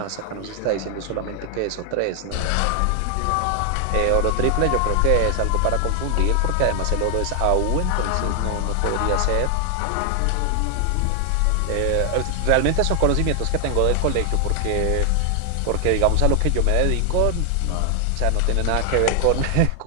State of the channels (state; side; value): different; both; correlation 0.00